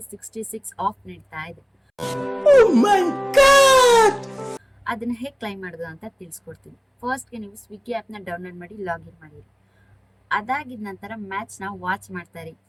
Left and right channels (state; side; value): identical; both; correlation 1.00